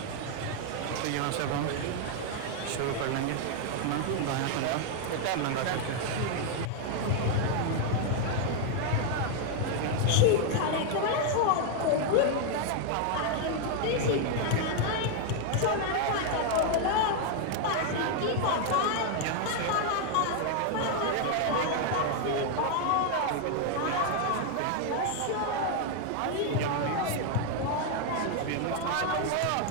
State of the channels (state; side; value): different; both; correlation 0.00